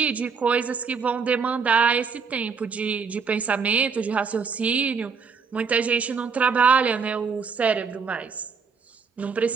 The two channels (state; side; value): quieter; left; 5.6 dB